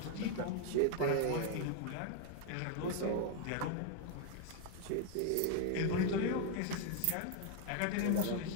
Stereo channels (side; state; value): both; different; correlation 0.01